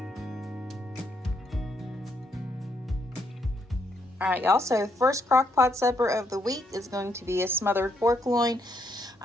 All right, y'all, so first crock pot supper of the week is going to be a smothered pork loin.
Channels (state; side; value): normal; both; correlation 0.74